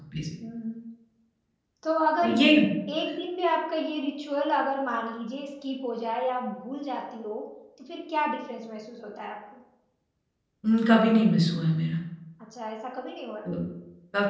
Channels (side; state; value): both; identical; correlation 1.00